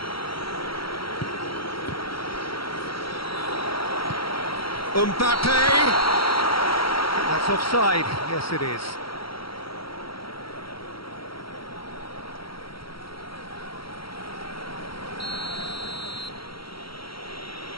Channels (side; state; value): right; late; 0.75 ms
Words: Mbappe! That's offside. Yes, it is.